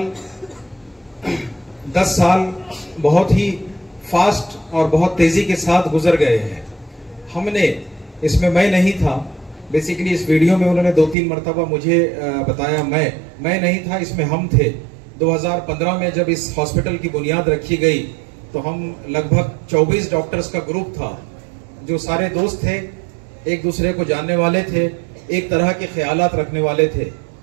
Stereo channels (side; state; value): left; drops out; at 11.2 s